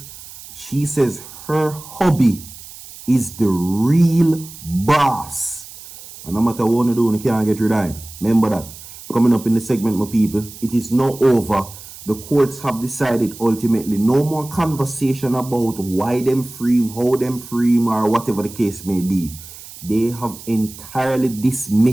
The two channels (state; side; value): noise; right; hiss, 16 dB below the sound